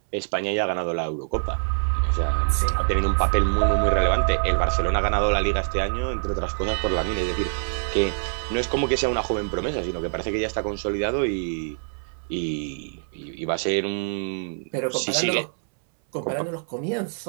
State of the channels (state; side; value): silent; left; 62 dB below the other